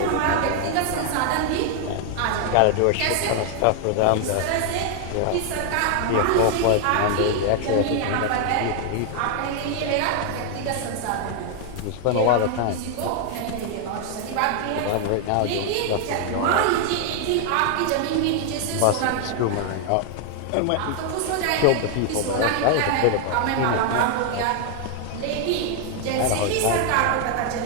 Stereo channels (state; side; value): different; both; correlation 0.00